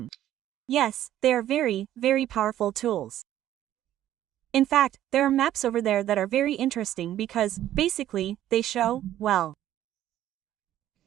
yes, they are very, very powerful tools. In fact, there are maps over there that are very interesting because, basically, they show, well,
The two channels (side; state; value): left; quieter; 12.5 dB